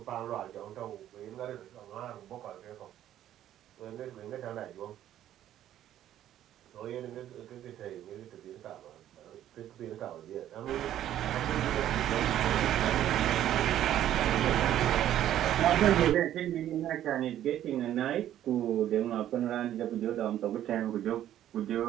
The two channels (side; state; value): left; quieter; 11.9 dB